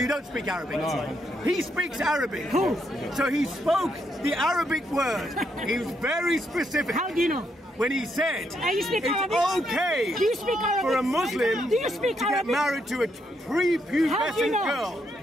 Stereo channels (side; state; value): both; normal; correlation 0.77